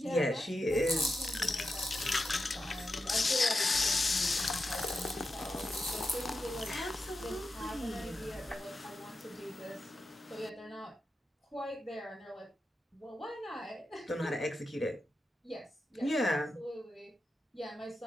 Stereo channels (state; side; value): normal; both; correlation 0.89